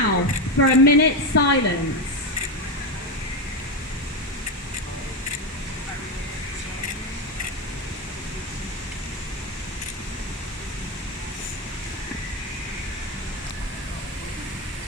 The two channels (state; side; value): normal; both; correlation 0.12